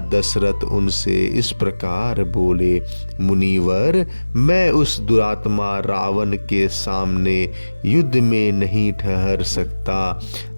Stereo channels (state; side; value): inverted; both; correlation -1.00